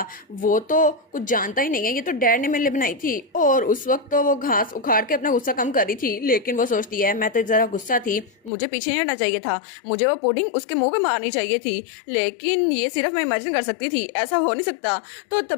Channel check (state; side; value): drops out; right; at 8.5 s